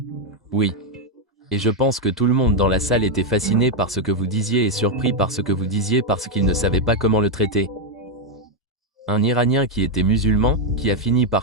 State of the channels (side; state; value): both; normal; correlation 0.02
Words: Oui. Et je pense que tout le monde dans la salle était fasciné par ce que vous disiez et surpris par ce que vous disiez parce qu'il ne savait pas comment le traiter. Un Iranien qui était musulman, qui a fini